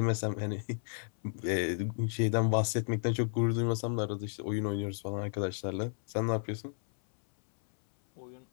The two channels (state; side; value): silent; right; 56 dB below the other